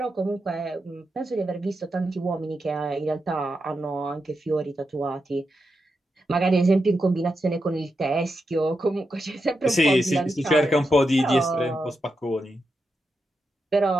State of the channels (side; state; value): both; normal; correlation 0.87